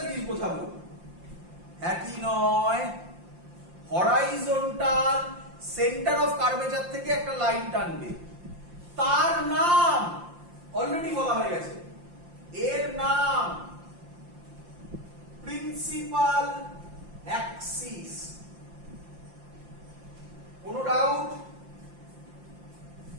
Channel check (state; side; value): late; left; 5.7 ms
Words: জিনিস বোঝাবো, একই নয়। হরাইজন্টাল সেন্টার অফ কার্ভেচার থেকে একটা লাইন টানবে, তার নাম অলরেডি বলা হয়ে গেছে, এর নাম প্রিন্সিপাল অ্যাক্সিস। কোনো ডাউট?